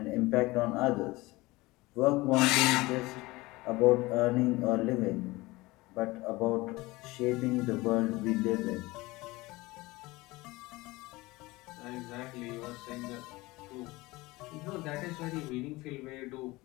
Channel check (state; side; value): quieter; right; 21.2 dB